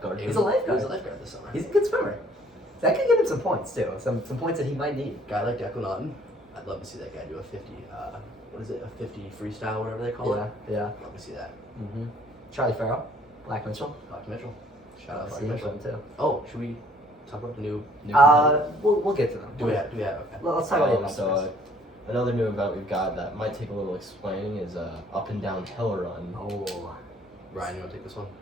He He's was a lifeguard. He was a lifeguard this summer. He's a good swimmer. That could give him some points too. Some points that he might need. Guy like Declan Naughton. I'd love to see that guy do a 50. What is it? A 50 freestyle, whatever they call it. Yeah. Love to see that. Mm-hmm. Charlie Farrell, Black Mitchell. Black Mitchell. Shout out Black See him Mitchell. too. Oh, should we talk about the new? We'll get to them. Do we have? Okay. Well, let's talk about the So another new event we've got that might take a little explaining is up and down hill run. Oh, Ryan, you want to take this one?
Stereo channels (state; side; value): normal; both; correlation 0.59